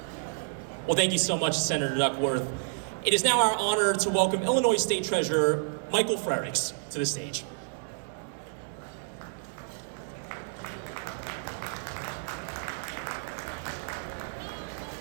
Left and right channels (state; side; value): silent; left; digital silence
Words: Well, thank you so much, Senator Duckworth. It is now our honor to welcome Illinois State Treasurer Michael Frerichs to the stage.